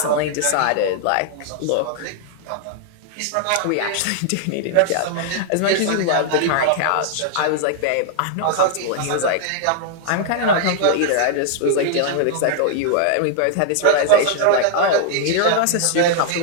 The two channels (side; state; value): both; different; correlation 0.00